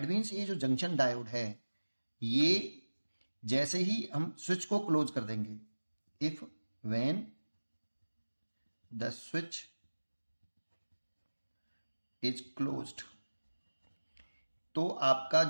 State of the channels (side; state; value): both; inverted; correlation -1.00